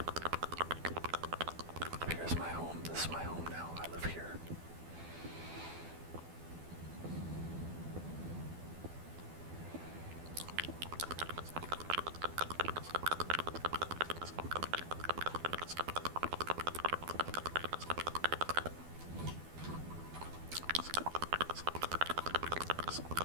Here's my home. This is my home now. I live here.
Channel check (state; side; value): late; left; 12 ms